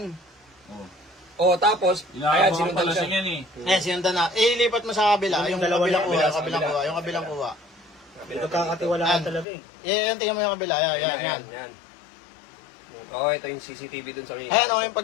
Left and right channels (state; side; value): drops out; right; at 9.5 s